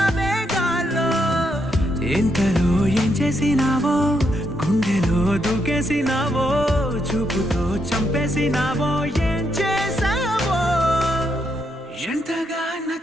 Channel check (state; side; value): normal; both; correlation 0.78